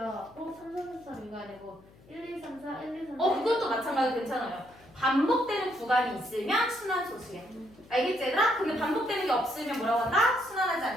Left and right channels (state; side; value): noise; left; hum, 25 dB below the sound